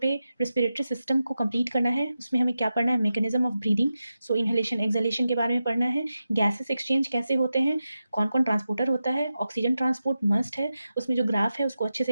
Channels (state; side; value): inverted; both; correlation -0.91